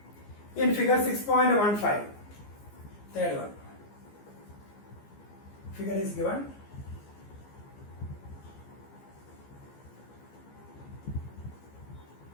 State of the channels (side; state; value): right; late; 15 ms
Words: In figure 6.15, third one. Figure is given.